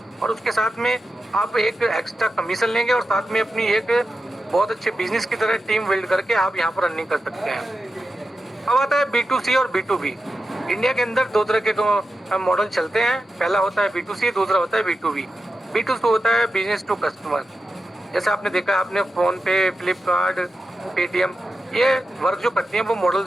और उसके साथ में आप एक एक्स्ट्रा कमीशन लेंगे और साथ में अपनी एक बहुत अच्छे बिजनेस की तरह टीम बिल्ड करके आप यहाँ पर रनिंग कर सकते हैं। अब आता है B2C और B2B। इंडिया के अंदर दो तरह के मॉडल चलते हैं। पहला होता है B2C, दूसरा होता है B2B। B2C होता है बिजनेस टू कस्टमर। जैसे आपने देखा, आपने फोन पे, फ्लिपकार्ट, पेटीएम, ये वर्क जो करती हैं वो मॉडल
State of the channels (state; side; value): normal; both; correlation 0.91